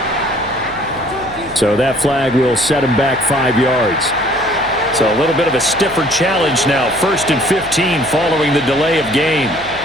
So that flag will set him back 5 yards. So a little bit of a stiffer challenge now. 1st and 15 following the delay of game.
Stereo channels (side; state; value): left; noise; hum, 19 dB below the sound